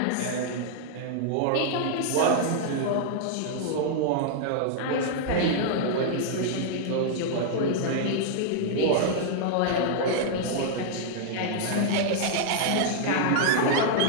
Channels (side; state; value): both; different; correlation -0.01